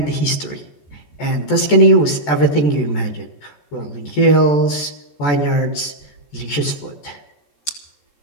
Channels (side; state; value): right; late; 14 ms